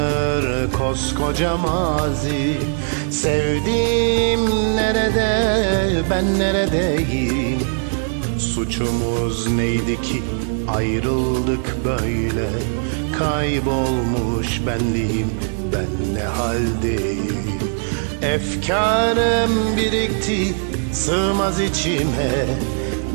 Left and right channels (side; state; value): left; silent; digital silence